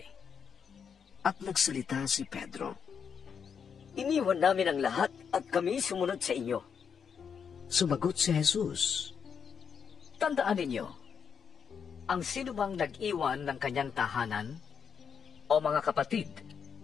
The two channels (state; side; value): quieter; right; 7.0 dB